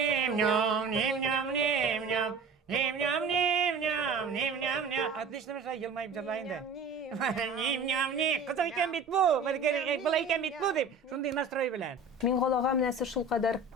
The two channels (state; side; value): quieter; left; 4.1 dB